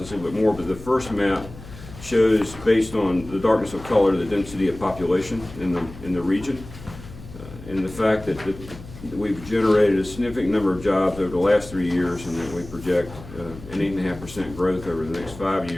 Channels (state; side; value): noise; left; hum, 16 dB below the sound